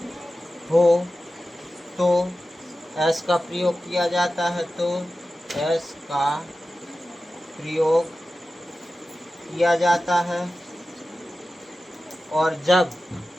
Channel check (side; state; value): both; normal; correlation 0.94